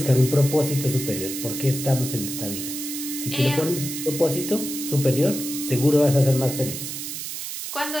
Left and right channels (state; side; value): noise; right; hiss, 6 dB below the sound